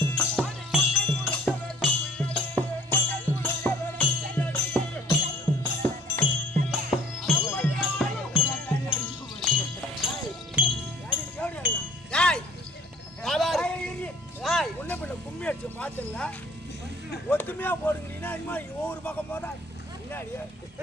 உன்ன பிள்ளை கும்மி அடிச்சு பாத்துல ஒத்துமையா போடுங்கிறீங்கன்னா இனிமே ஒவ்வொரு பக்கம் போதா முன்னாடி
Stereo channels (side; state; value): both; normal; correlation 0.55